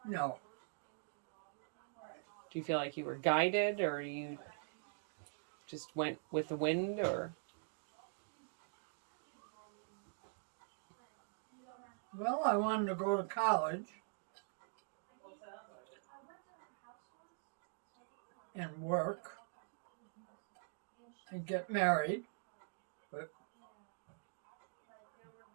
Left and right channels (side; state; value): left; silent; digital silence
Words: No. Do you feel like you were guided, or you just went with the wind, or... Well, I wanted to go to college and work and get married, but